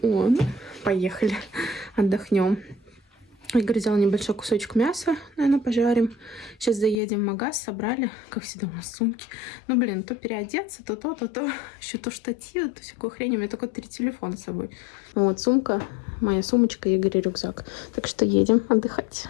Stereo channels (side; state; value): right; drops out; at 7.0 s